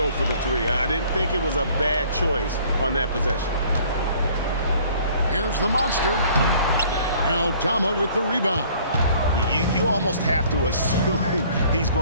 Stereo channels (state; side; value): inverted; both; correlation -0.55